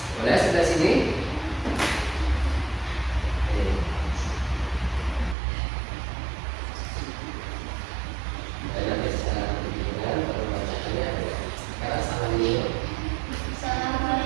Boleh sebelah sini?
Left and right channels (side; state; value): left; drops out; at 5.4 s